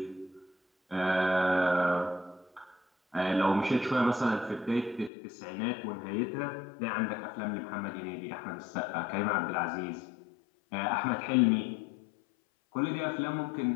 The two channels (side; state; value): right; drops out; at 5.1 s